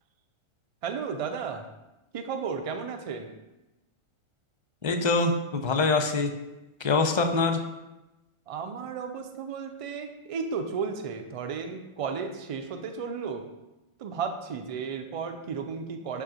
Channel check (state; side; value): late; left; 1.3 ms